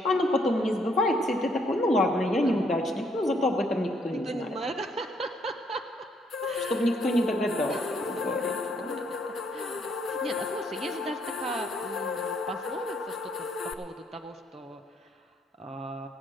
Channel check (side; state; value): both; normal; correlation 0.70